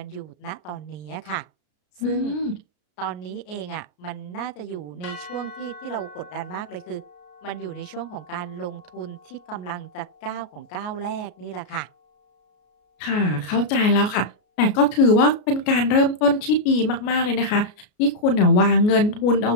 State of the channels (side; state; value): right; late; 33 ms